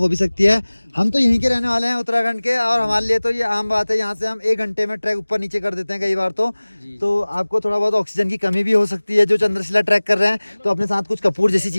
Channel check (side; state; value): both; inverted; correlation -1.00